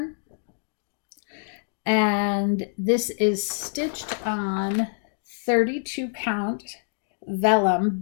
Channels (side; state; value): right; silent; 60 dB below the other